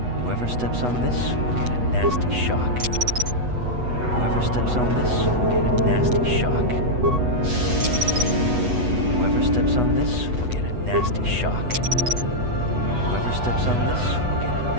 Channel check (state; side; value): late; left; 8.1 ms